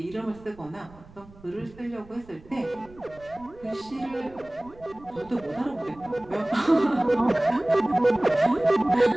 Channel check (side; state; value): right; noise; rumble, 23 dB below the sound